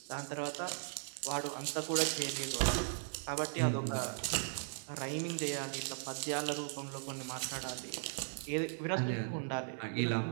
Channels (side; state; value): left; silent; 53 dB below the other